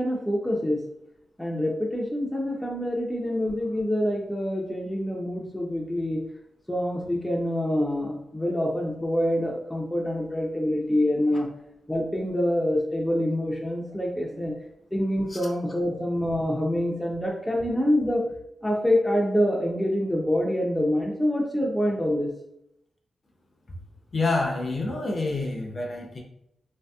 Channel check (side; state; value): both; normal; correlation 0.93